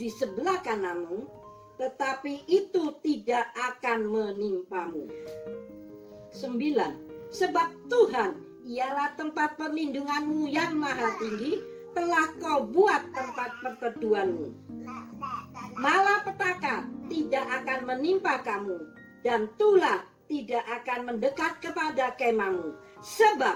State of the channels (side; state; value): both; identical; correlation 1.00